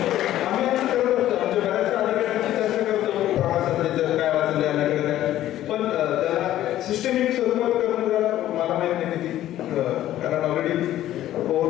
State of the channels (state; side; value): quieter; right; 13.2 dB